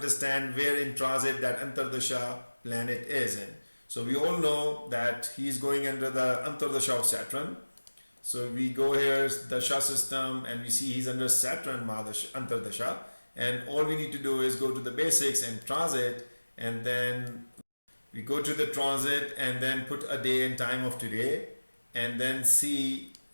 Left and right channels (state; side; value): inverted; both; correlation -1.00